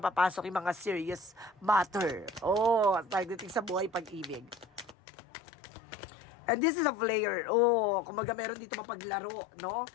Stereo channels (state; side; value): drops out; right; at 5.0 s